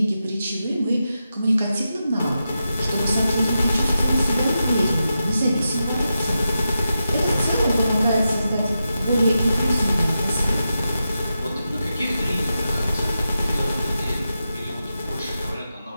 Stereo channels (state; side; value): inverted; both; correlation -0.89